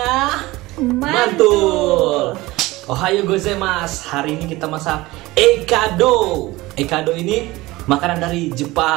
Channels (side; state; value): left; quieter; 19.9 dB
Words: Mantul. Ohayo gozaimasu. Hari ini kita masak ekado. Ekado ini makanan dari